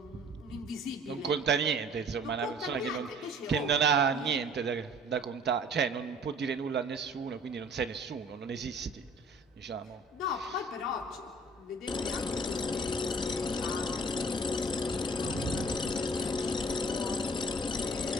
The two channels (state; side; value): normal; both; correlation 0.52